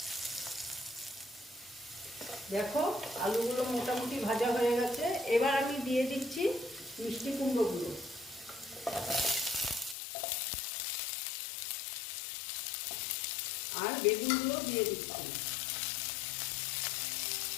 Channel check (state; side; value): drops out; right; at 10.0 s